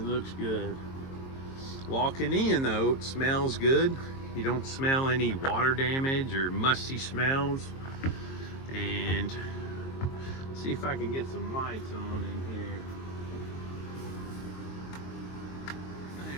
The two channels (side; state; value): right; late; 22 ms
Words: looks good. Walking in though, it smells good. You don't smell any water damage or musty smells. And let's see if I can get some lights on in here.